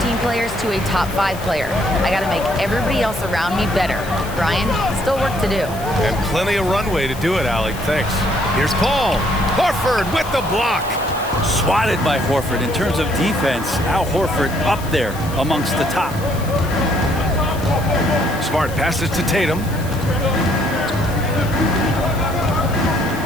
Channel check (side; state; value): left; noise; hiss, 16 dB below the sound